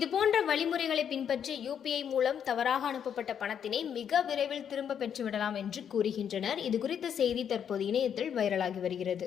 போன்ற வழிமுறைகளை பின்பற்றி யூபிஐ மூலம் தவறாக அனுப்பப்பட்ட பணத்தினை மிக விரைவில் திரும்ப பெற்றுவிடலாம் என்று கூறுகின்றனர். இது குறித்த செய்தி தற்போது இணையத்தில் வைரலாகி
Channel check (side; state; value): right; quieter; 8.4 dB